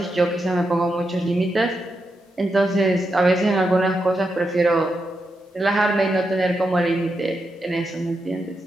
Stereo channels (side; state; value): both; normal; correlation 0.85